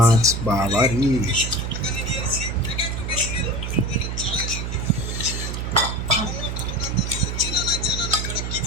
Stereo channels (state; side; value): noise; right; hum, 3 dB below the sound